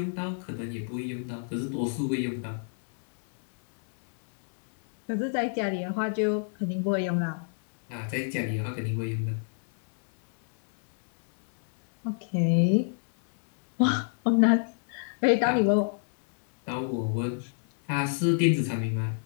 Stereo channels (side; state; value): right; silent; 60 dB below the other